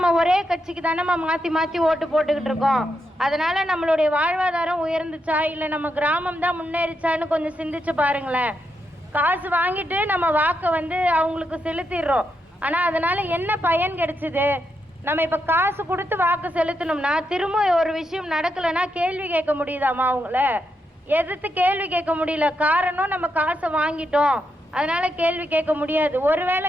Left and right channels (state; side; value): normal; both; correlation 0.82